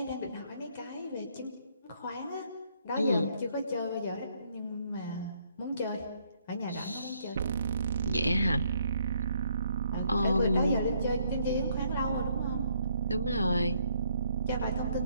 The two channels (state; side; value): inverted; both; correlation -0.70